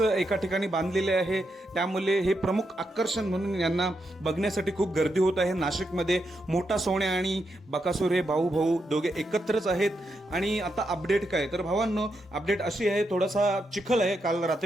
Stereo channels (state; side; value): normal; both; correlation 0.83